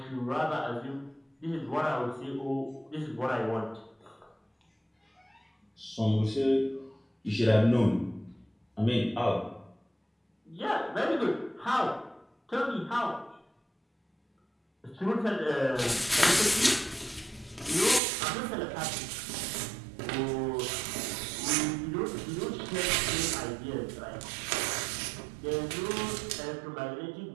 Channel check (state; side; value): drops out; left; at 18.0 s